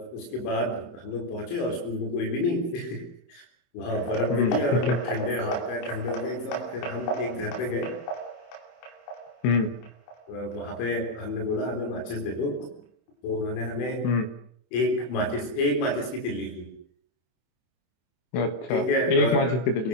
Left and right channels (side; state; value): right; late; 24 ms